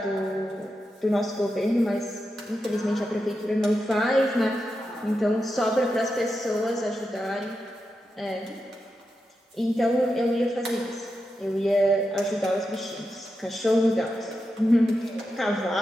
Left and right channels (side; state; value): both; normal; correlation 0.88